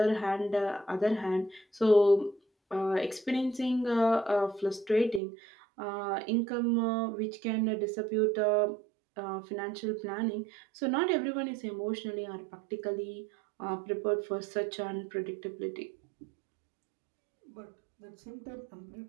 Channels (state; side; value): drops out; left; at 5.2 s